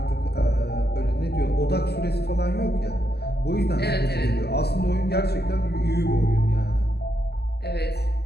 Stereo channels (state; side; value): late; right; 0.47 ms